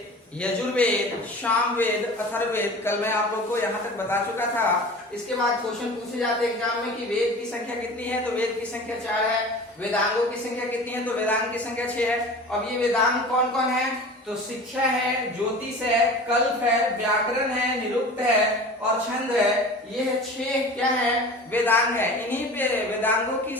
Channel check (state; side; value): normal; both; correlation 0.38